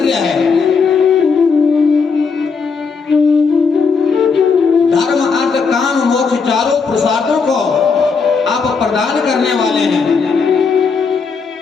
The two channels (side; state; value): right; quieter; 5.2 dB